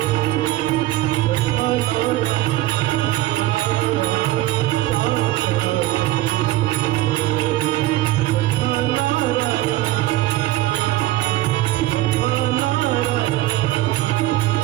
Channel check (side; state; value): left; quieter; 16.5 dB